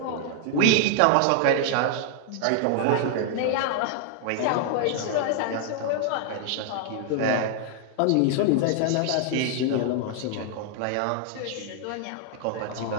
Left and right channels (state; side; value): different; both; correlation 0.00